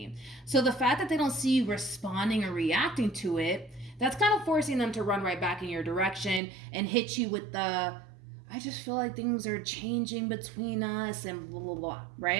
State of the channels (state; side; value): drops out; left; at 6.4 s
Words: So the fact that they don't see you responding or reacting to it, that's kind of forcing them to run right back in your direction and hit you with the, I just feel like things are changing between us and blah, blah, blah,